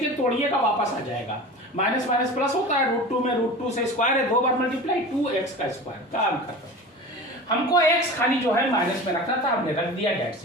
तोड़िएगा वापस आ जाएगा, माइनस माइनस प्लस होता है, √2 में √2 से स्क्वायर है, 2 बार मल्टीप्लाई, 2x का स्क्वायर, काम खत्म। हमको x खाली जो है माइनस में रखना था, हमने रख दिया, डेट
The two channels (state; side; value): normal; both; correlation 0.34